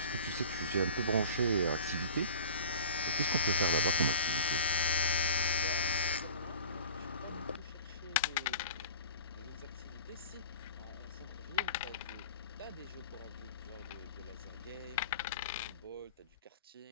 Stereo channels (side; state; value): both; inverted; correlation -0.41